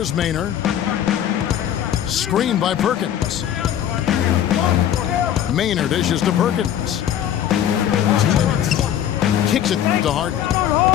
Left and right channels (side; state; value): right; quieter; 10.5 dB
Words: Maynard. Screen by Perkins. Maynard dishes to Perkins. Kicks it to Harden.